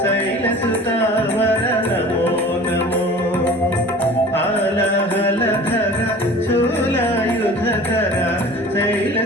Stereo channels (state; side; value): normal; both; correlation 0.42